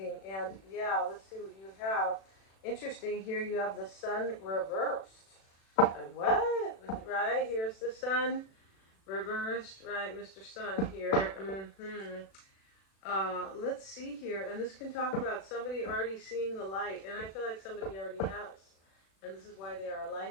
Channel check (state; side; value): late; right; 36 ms